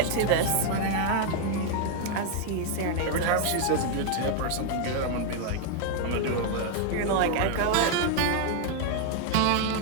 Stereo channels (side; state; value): both; different; correlation 0.01